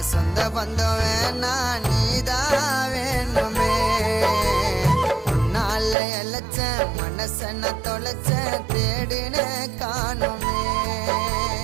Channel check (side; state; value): left; drops out; at 6.0 s